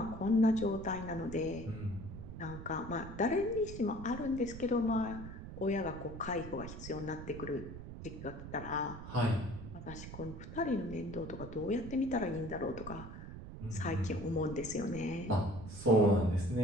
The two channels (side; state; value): right; noise; rumble, 10 dB below the sound